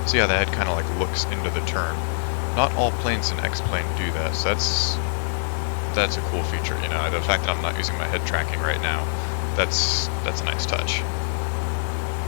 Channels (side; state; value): right; silent; digital silence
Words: See how the head kind of like looks into the turn. Not all planes in X-plane do that, so that's a cool feature, you know. The fact that I'm not using my head tracking right now, that's a nice touch.